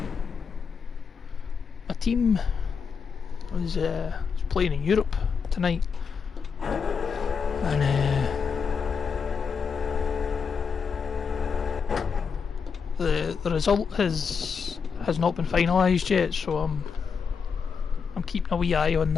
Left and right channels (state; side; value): quieter; right; 6.0 dB